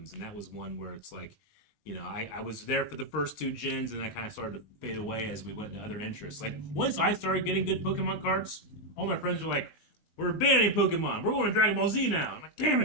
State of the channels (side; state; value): right; late; 20 ms